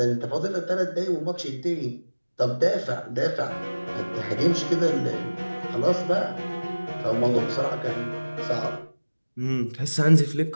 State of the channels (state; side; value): inverted; both; correlation -1.00